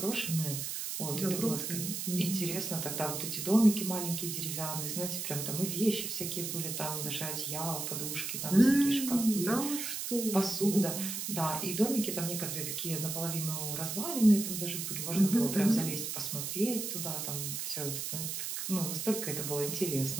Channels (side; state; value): right; noise; hiss, 4 dB below the sound